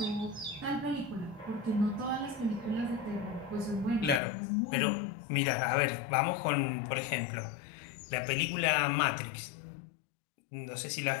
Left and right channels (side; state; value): right; drops out; at 4.2 s